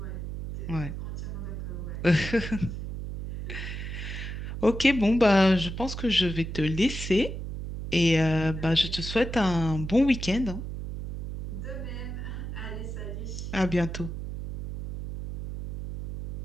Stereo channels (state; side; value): noise; right; hum, 6 dB below the sound